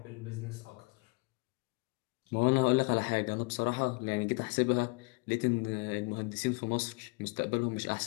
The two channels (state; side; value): quieter; right; 28.5 dB